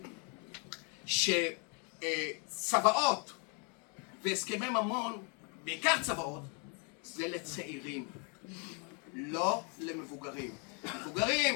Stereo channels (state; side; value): quieter; right; 36.4 dB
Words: שצוואות והסכמי ממון, בעיקר צוואות, זה לצעירים, לא למבוגרים.